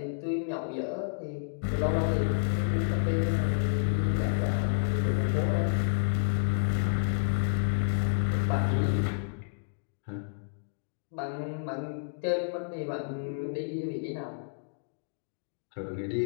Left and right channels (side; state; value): right; silent; digital silence